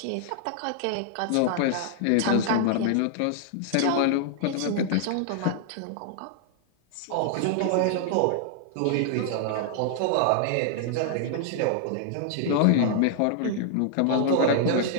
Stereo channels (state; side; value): different; both; correlation -0.01